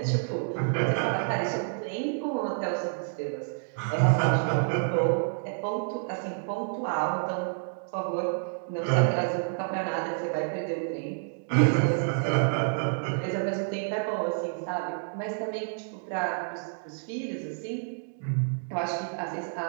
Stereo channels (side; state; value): left; silent; digital silence